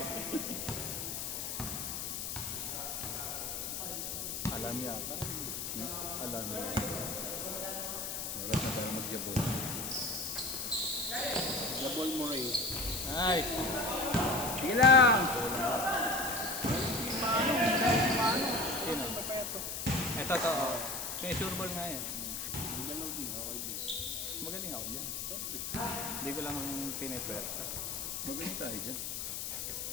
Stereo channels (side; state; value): left; noise; hiss, 4 dB below the sound